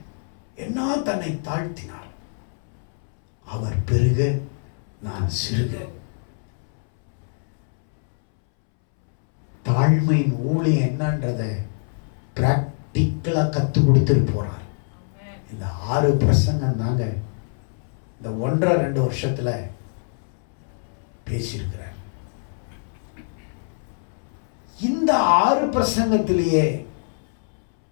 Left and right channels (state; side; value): silent; right; 63 dB below the other